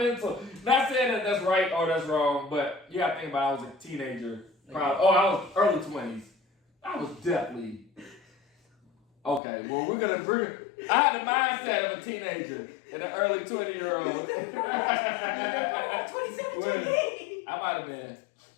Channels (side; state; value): right; drops out; at 9.4 s